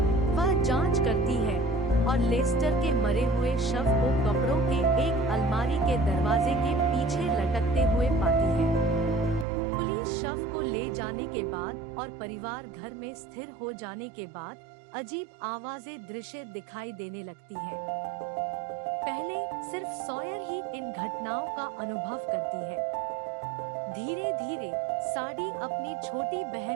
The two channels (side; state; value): left; drops out; at 9.5 s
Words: वह जांच करती है और लेस्टर के मरे हुए शव को कपड़ों के एक अलमारी के दरवाजे के पीछे लटकते हुए पाती है। पुलिस शव को ले जाने के बाद और परिवार घर में स्थिर हो जाने के बाद अजीब आवाजें दृश्य दिखाई देने लगती हैं। पहले सिर्फ सॉयर ही इन घटनाओं का अनुभव करती है। धीरे धीरे साड़ी अपनी छोटी